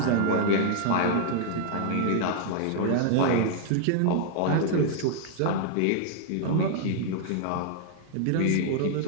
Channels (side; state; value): both; different; correlation -0.01